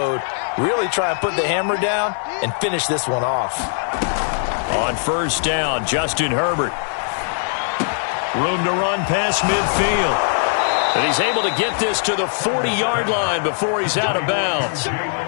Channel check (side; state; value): right; silent; digital silence